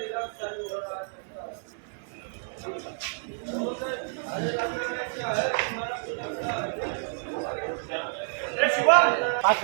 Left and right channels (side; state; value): left; silent; 59 dB below the other